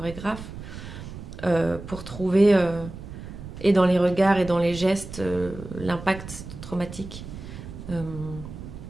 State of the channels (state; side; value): noise; right; rumble, 12 dB below the sound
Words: pour trouver, et dans les regards et dans les gestes, l'impact traumatique.